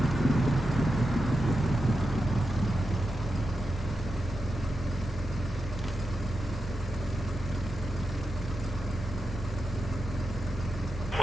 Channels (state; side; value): normal; both; correlation 0.89